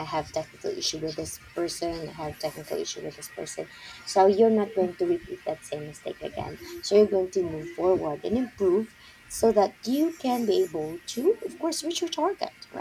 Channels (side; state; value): both; identical; correlation 1.00